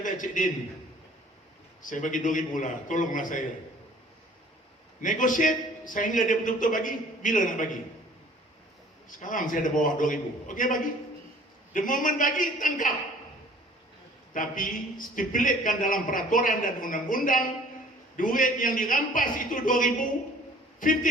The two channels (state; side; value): normal; both; correlation 0.51